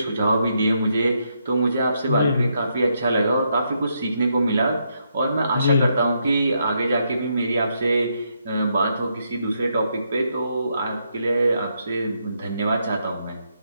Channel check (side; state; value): both; inverted; correlation -0.78